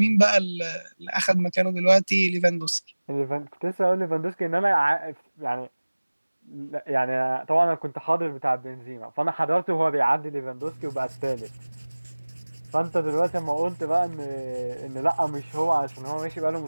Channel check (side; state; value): both; inverted; correlation -1.00